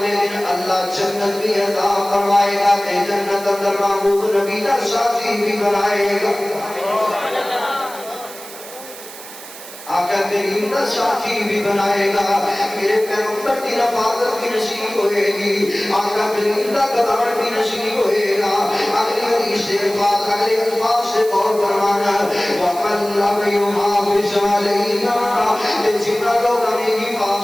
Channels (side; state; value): right; noise; hiss, 15 dB below the sound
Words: دن اللہ جنت کی عطا فرمائے گا کہ جنت اندر محبوب نبی کا ساتھی بھی بنائے گا. آقا کریم کا ساتھی بھی بنائے گا, میرے پیغمبر کی رفاقت بھی نصیب ہوئے گی, آقا کریم کا قدر بھی نصیب ہوئے گا. اگلی حدیث سے اگلے الفاظ سے غور فرمانا, وَمَنْ لَمْ يُحَافِظْ عَلَيْهَا, جتنا لوگ ہمیں